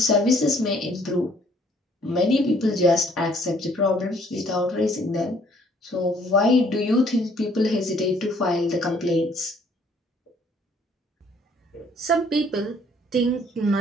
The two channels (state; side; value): normal; both; correlation 0.62